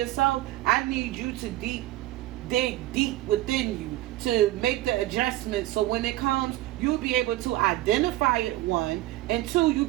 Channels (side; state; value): left; quieter; 16.2 dB